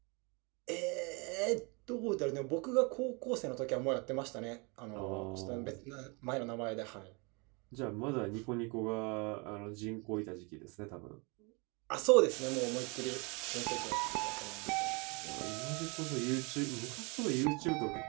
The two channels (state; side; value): quieter; left; 30.9 dB